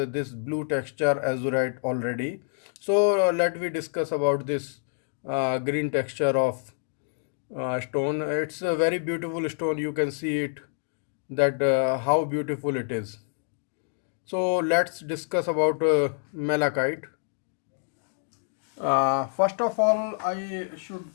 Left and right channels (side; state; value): right; silent; digital silence